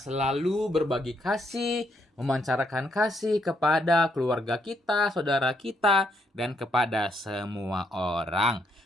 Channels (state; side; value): normal; both; correlation 0.74